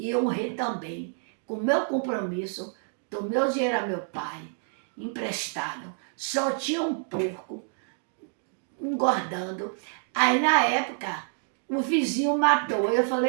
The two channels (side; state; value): left; silent; 59 dB below the other